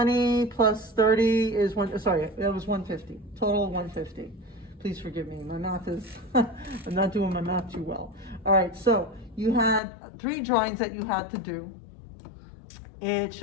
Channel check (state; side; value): drops out; right; at 9.8 s